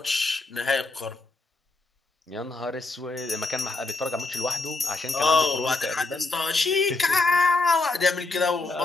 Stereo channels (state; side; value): quieter; right; 3.4 dB